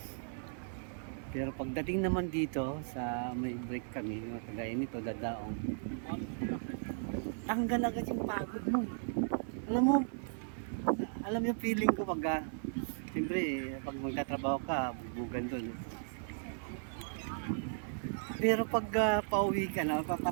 Pero pagdating naman dito sa may break kami, no, kagaya nito dadaong, tanggal agad yung pagod mo. Alam yung feeling ko pag siyempre pag magtatrabaho ka, bugbugan doon. Pero pag pauwi ka na,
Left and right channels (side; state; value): left; silent; digital silence